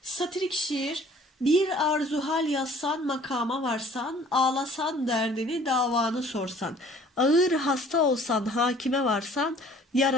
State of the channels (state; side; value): normal; both; correlation 0.53